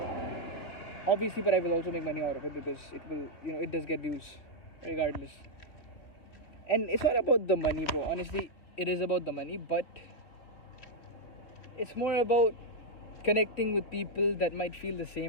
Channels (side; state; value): right; late; 3.3 ms